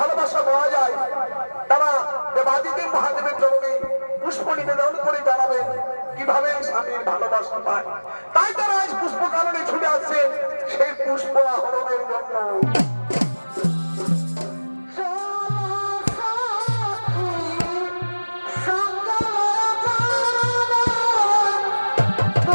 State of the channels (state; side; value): inverted; both; correlation -1.00